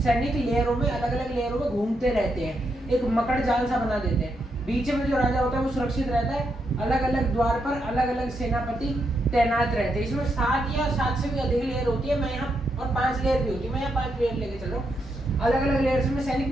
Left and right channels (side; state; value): both; normal; correlation 0.81